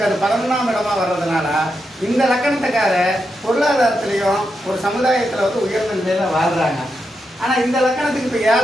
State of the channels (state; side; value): normal; both; correlation 0.85